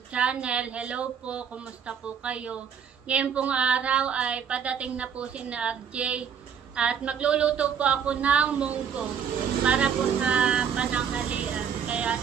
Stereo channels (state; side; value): quieter; left; 7.5 dB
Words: channel. Hello po, kumusta po kayo? Ngayon pong araw ay padating na po si RJ at magluluto po ako ng munggo para po sa pananghalian. Kaya